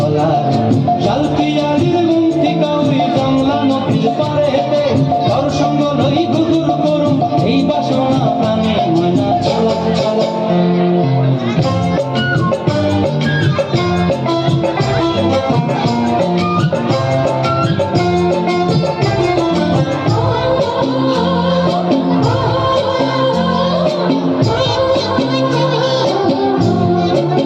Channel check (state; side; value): identical; both; correlation 1.00